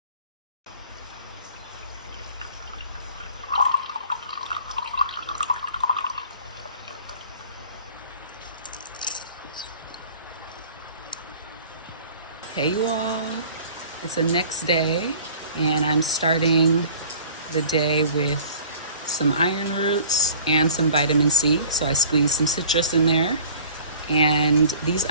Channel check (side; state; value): both; inverted; correlation -0.49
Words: Hey you all, it's the next day, and I'm starting the day with some iron roots and some vitamin C. So I squeezed some citrus in there. And these